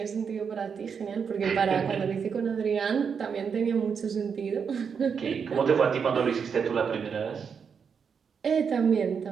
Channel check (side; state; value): left; quieter; 6.5 dB